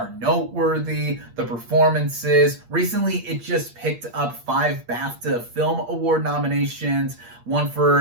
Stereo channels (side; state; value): left; late; 8.5 ms